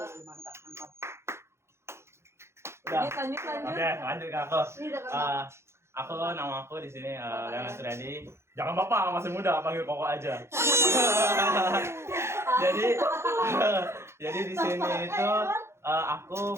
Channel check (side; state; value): left; late; 0.13 ms